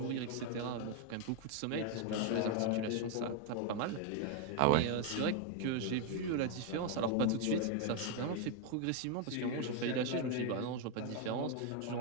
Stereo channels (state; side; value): different; both; correlation 0.01